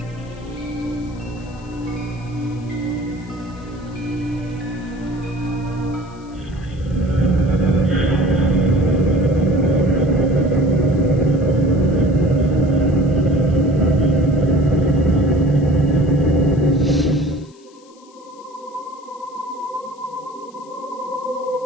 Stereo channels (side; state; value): left; noise; hiss, 29 dB below the sound